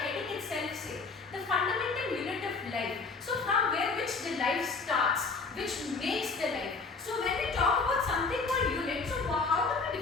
itself say? The fundamental unit of life. So from where which the life starts, which makes the life. So when we talk about something called unit, so how do we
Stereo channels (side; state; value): right; quieter; 4.3 dB